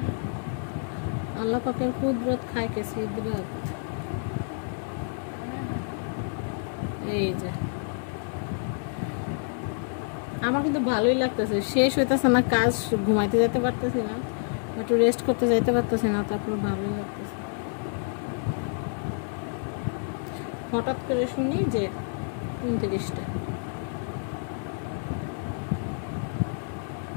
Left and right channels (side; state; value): right; silent; 59 dB below the other